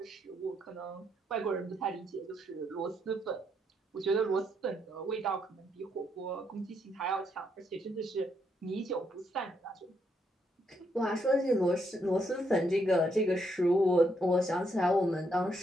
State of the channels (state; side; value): normal; both; correlation 0.76